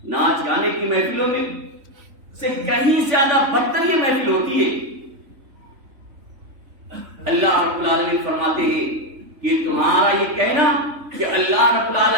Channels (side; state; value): left; late; 3.4 ms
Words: ناچ گانے کی محفلوں میں سے کہیں زیادہ بدتر یہ محفل ہوتی ہے. اللہ رب العالمین فرماتے ہیں کہ تمہارا یہ کہنا کہ اللہ رب